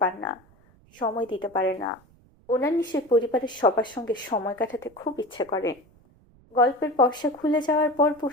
পান না, সময় দিতে পারে না। ওনার নিশ্চয়ই পরিবারের সবার সঙ্গে সময় কাটাতে খুব ইচ্ছে করে, গল্পের পর্সা খুলে যাওয়ার পর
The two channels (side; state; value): right; noise; rumble, 29 dB below the sound